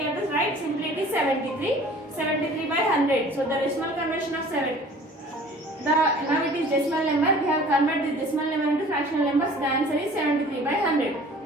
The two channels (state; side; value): normal; both; correlation 0.48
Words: have to write simply it is 73. 73 by 100. So the decimal conversion of 7. Now it is decimal number. We have converted this decimal number into fractional numbers. The answer is 73 by 100.